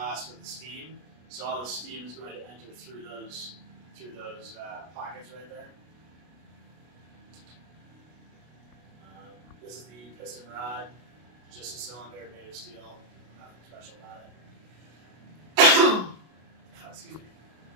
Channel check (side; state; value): left; late; 33 ms